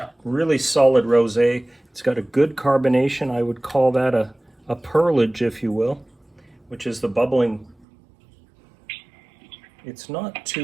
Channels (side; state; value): left; drops out; at 7.9 s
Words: really solid rosé. It's got a good carbonation. I would call that a pearlage, if you will, which is the bubbling. It's not